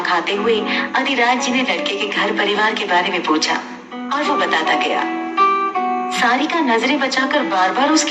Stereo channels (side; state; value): both; identical; correlation 1.00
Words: खाते हुए अधिराज जी ने लड़के के घर परिवार के बारे में पूछा और वो बताता गया। सारिका नजरें बचाकर बार बार